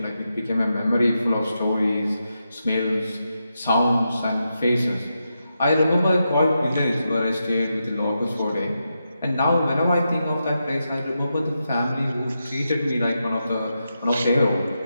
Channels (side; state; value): both; inverted; correlation -0.87